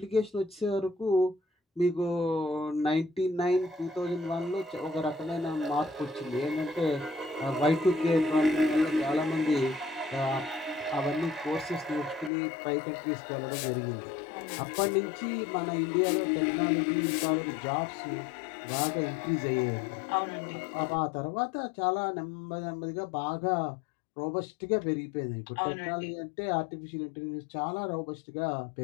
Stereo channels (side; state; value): right; drops out; at 12.3 s